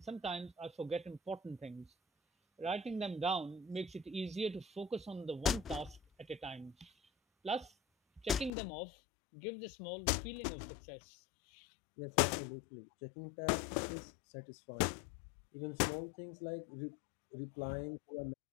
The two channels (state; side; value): drops out; right; at 8.5 s